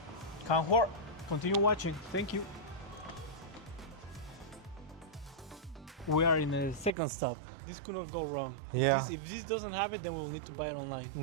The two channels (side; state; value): left; drops out; at 7.0 s